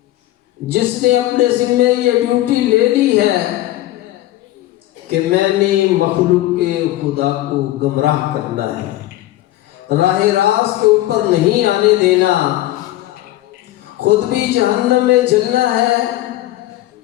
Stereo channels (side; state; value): right; quieter; 15.5 dB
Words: جس نے اپنے ذمہ یہ ڈیوٹی لے لی ہے کہ میں نے مخلوق کے خدا کو گمراہ کرنا ہے، راہ راست کے اوپر نہیں آنے دینا، خود بھی جہنم میں جلنا ہے